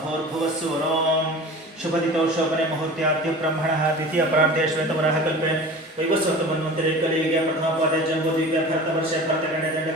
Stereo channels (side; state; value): both; normal; correlation 0.37